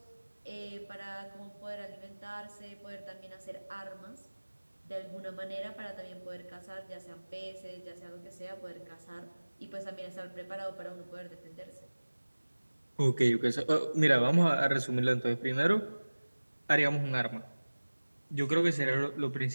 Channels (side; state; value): both; inverted; correlation -1.00